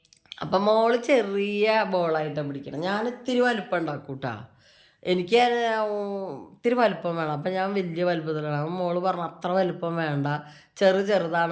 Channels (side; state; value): both; identical; correlation 1.00